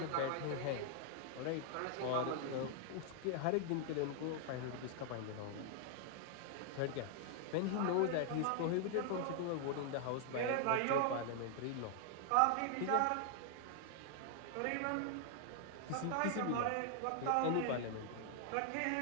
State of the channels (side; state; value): both; different; correlation 0.00